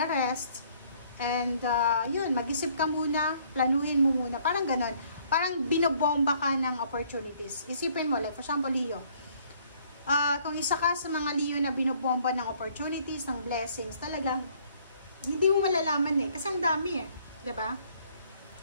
rest, and yun, mag-isip ka muna, planuhin mo muna. Parang ganon. Parang binobomba ka ng opportunities. Isipin mo, like for example, Leo. Kung isa ka sa mga Leo na binobomba ng opportunities, ng blessings, talagang hindi mo malalaman kasi ang dami diba?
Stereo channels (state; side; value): inverted; both; correlation -0.62